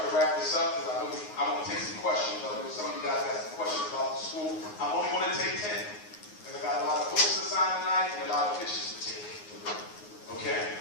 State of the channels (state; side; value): late; right; 9.5 ms